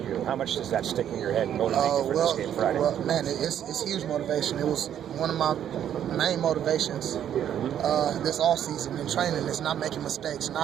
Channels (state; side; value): quieter; left; 10.0 dB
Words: how much does that stick in your head and motivate you for this game Friday? Well, man, it's huge motivation. It was one of my main motivations this offseason in training is not making mistakes, and